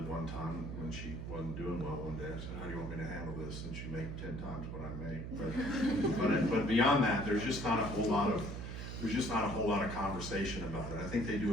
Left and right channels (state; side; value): noise; right; hum, 6 dB below the sound